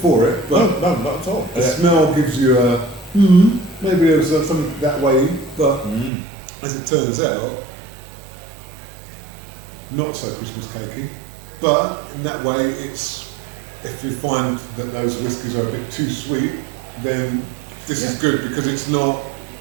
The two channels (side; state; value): left; drops out; at 6.1 s